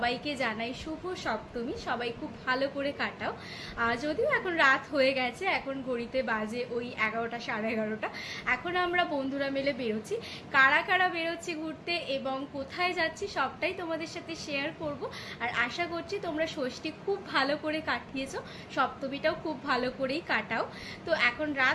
জানাই শুভ সপ্তমী। সবাই খুব ভালো করে কাটাও। যদিও এখন রাত হয়ে গেছে, এখন ঘড়িতে বাজে ওই 11টা সাড়ে 11টা। এখন আমরা বন্ধুরা মিলে বেরোচ্ছি। কারা কারা বেরোচ্ছি ঘুরতে এবং কোথায় যাচ্ছি সবটাই তোমাদের সাথে শেয়ার করব। আর আশা করছি তোমরা ষষ্ঠী খুব ভালো করে কাটিয়েছো, সপ্তমীটাও খুব ভালো করেই কাটাও। তো এখন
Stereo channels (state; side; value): identical; both; correlation 1.00